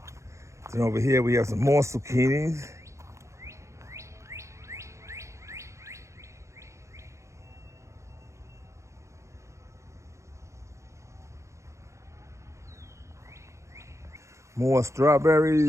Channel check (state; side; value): late; left; 0.14 ms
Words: Then over here we have some more zucchinis. More